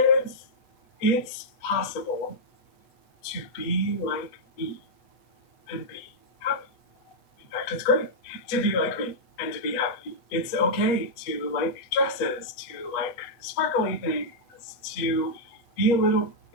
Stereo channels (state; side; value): late; right; 8.1 ms